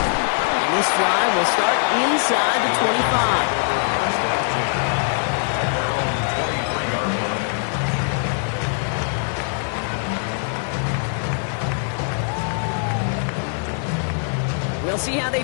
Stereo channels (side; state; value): right; silent; 64 dB below the other